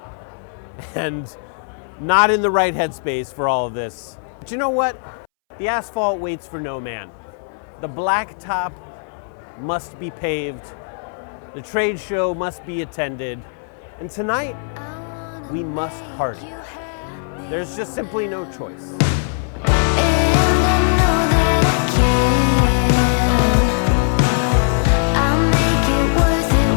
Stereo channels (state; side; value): silent; right; 65 dB below the other